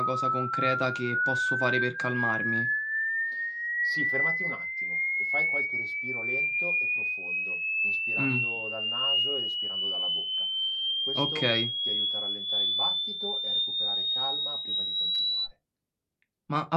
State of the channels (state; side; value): identical; both; correlation 1.00